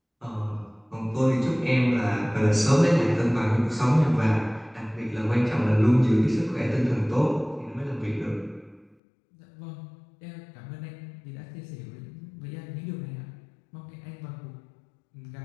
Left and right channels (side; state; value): right; drops out; at 9.0 s